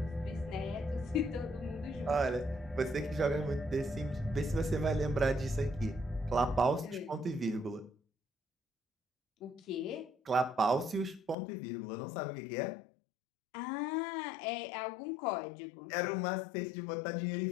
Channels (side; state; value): right; drops out; at 11.4 s